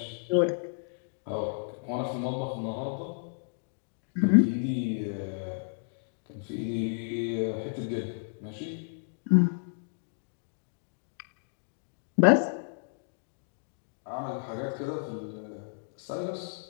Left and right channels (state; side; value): silent; right; digital silence